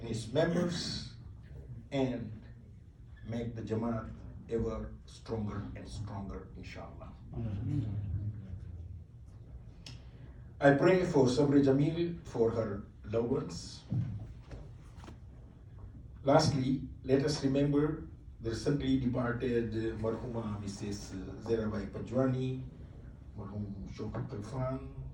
its members and make the Jamaat ever stronger and stronger, inshallah. I pray for Sabri Jamil, for her loved ones. Lastly, let us remember the recently departed Marhuma Mrs. Zerabai Pajwani, Marhum Shokar Kalfan,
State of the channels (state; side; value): identical; both; correlation 1.00